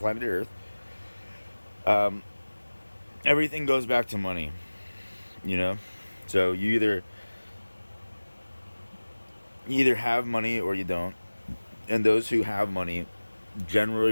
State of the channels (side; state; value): both; inverted; correlation -1.00